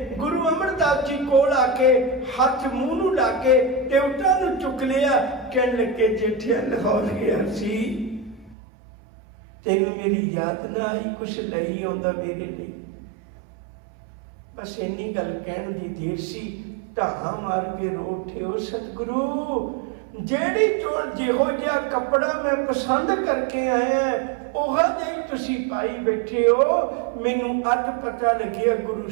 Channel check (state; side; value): drops out; left; at 8.6 s